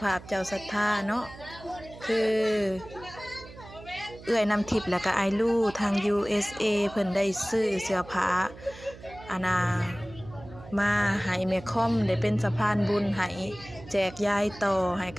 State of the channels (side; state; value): right; noise; hum, 17 dB below the sound